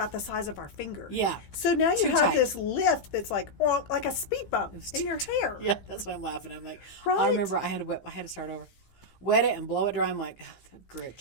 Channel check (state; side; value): late; right; 15 ms